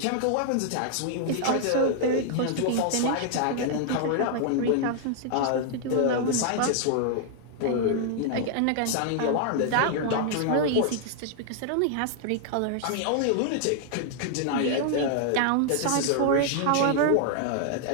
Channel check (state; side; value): different; both; correlation -0.01